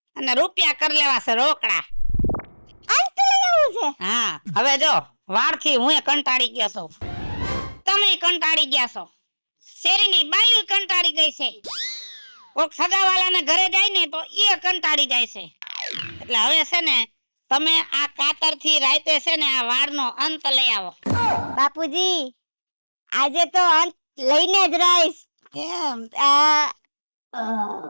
અને રૂપિયા કરી લેવા છે રોકડા. અંત લઈ આવું છે? હા, હવે જો વાળથી હું કંટાળી ગયો છું, તમે કંટાળી ગયા છો, શેરીની બાયું કંટાળી ગઈ છે, કોક સગાવાલાને ઘરે જાય ને તો એ કંટાળી જાય છે. એટલે હવે છે ને તમે આ કાતરથી રાતે છે ને આ વાળનો અંત લઈ આવો. બાપુજી આજે તો અંત લઈને જ રહીશ. એમ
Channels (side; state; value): both; inverted; correlation -1.00